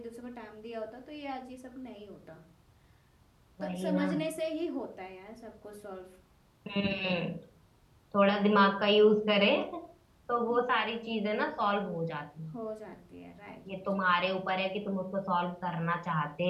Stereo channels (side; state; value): both; identical; correlation 1.00